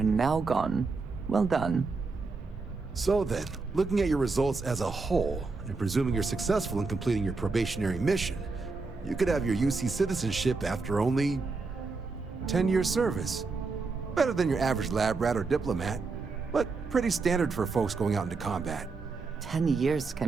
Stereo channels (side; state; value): left; quieter; 4.1 dB